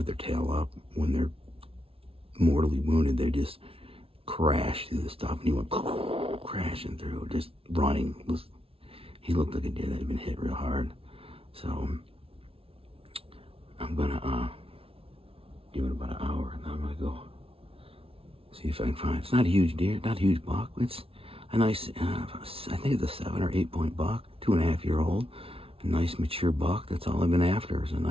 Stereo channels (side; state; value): left; late; 0.27 ms